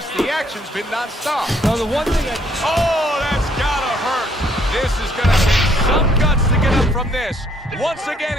The action's been nonstop. Now, the one thing Oh, that's gotta hurt. This is gonna take some guts to get up from this. Once again,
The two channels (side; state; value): both; normal; correlation 0.66